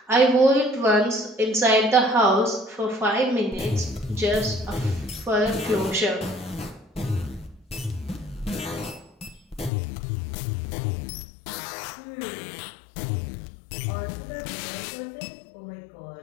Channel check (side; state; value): right; drops out; at 9.7 s